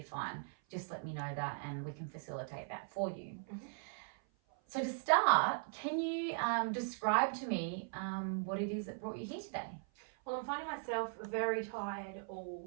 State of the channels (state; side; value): silent; left; 52 dB below the other